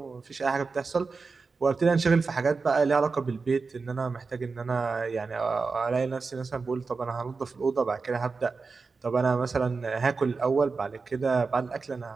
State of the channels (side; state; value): left; quieter; 4.5 dB